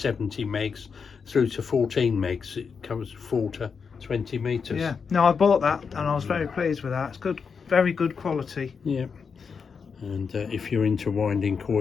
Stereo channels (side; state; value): right; quieter; 5.8 dB